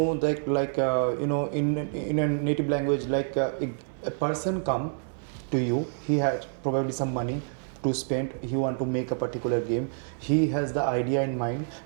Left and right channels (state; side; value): silent; left; digital silence